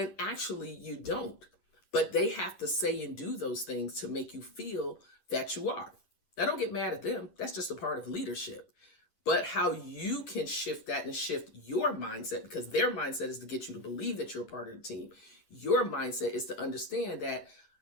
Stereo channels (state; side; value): late; right; 11 ms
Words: actually you don't. But they have to say and do those things to make you feel that you are. Now, don't get mad at them. That's just a part of leadership. But how you can shift that and shift your mindset, because their mindset is to get you to believe that you're a part of the team. Your mindset is to understand that